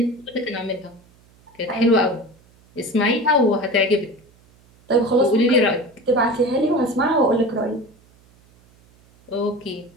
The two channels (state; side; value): noise; right; hum, 30 dB below the sound